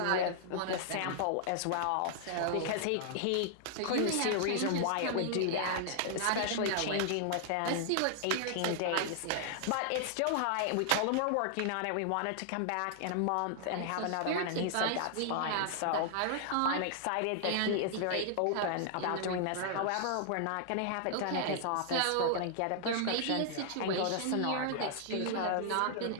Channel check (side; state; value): both; different; correlation -0.01